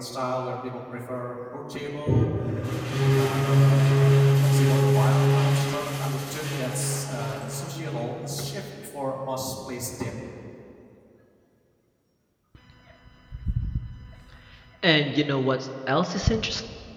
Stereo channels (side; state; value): both; identical; correlation 1.00